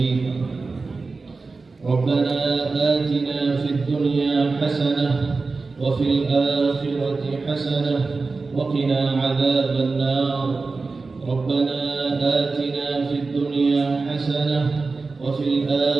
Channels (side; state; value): left; quieter; 4.0 dB